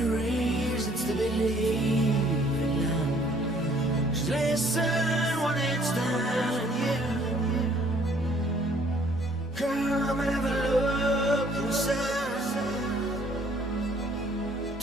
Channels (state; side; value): normal; both; correlation 0.60